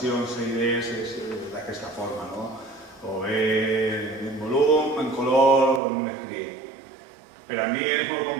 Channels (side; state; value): left; drops out; at 5.8 s